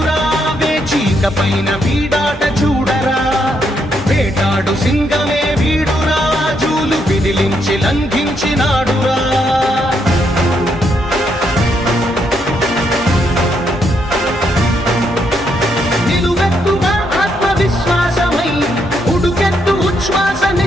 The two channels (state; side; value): normal; both; correlation 0.76